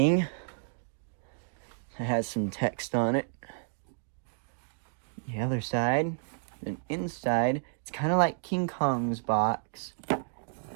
It has some text on it. The other side, and inside, it's kind of like King Kong's box.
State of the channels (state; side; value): silent; left; digital silence